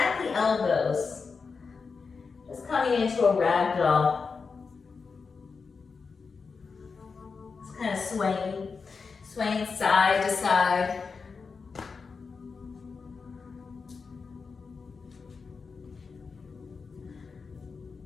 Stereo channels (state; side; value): quieter; right; 5.0 dB